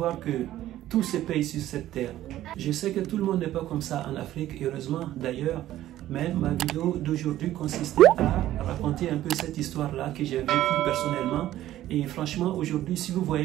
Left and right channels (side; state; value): left; quieter; 13.7 dB